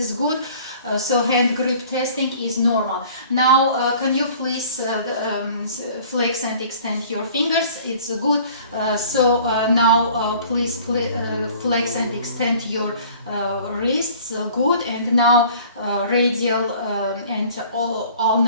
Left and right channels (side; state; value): both; inverted; correlation -0.50